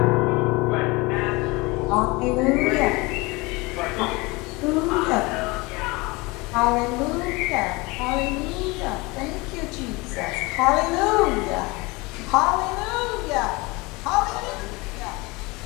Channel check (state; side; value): quieter; right; 24.6 dB